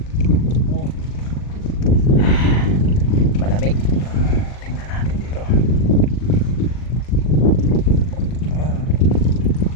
Oh. Malamig. Tingnan natin dito.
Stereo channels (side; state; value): right; late; 40 ms